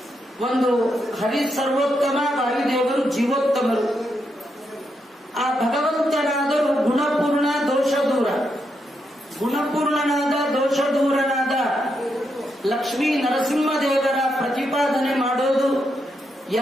ಒಂದು ಹರಿ ಸರ್ವೋತ್ತಮ, ವಾಯುದೇವರು ಜೀವೋತ್ತಮರು. ಆ ಭಗವಂತನಾದರೂ ಗುಣಪೂರ್ಣ, ದೋಷ ದೂರ. ಗುಣಪೂರ್ಣನಾದ, ದೋಷ ದೂರನಾದ ಲಕ್ಷ್ಮೀ ನರಸಿಂಹದೇವರ ಪ್ರತಿಪಾದನೆ ಮಾಡೋದು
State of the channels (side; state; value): both; normal; correlation 0.81